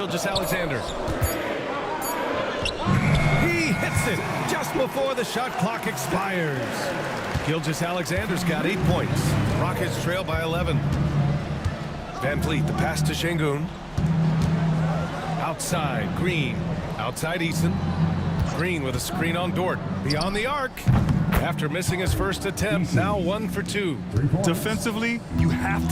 He hits it just before the shot clock expires. Gilgeous-Alexander's got 8 points. Rockets trail by 11. Van Vliet, the pass to Şengün. Outside, Green. Outside, Eason. Green with a screen on Dort. Beyond the arc. After missing his first attempt, now 1 for 2. Defensively, you have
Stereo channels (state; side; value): identical; both; correlation 1.00